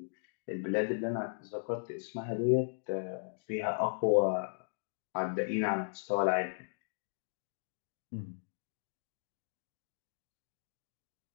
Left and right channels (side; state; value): right; silent; digital silence